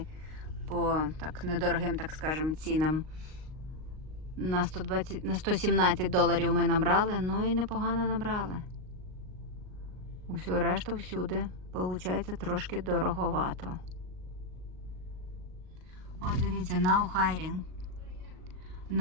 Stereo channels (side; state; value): left; late; 38 ms